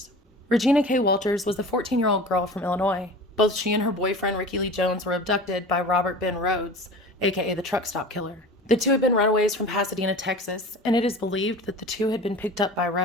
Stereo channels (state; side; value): normal; both; correlation 0.37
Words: Regina K. Walters was a 14-year-old girl from Illinois. Both she and her boyfriend, Ricky Lee Jones, were abducted by Robert Ben Rhodes, aka the truck stop killer. The two had been runaways from Pasadena, Texas, and it is believed that the two had been picked up by